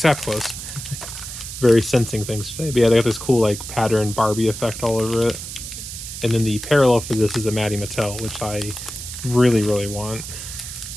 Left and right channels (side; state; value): right; noise; hiss, 9 dB below the sound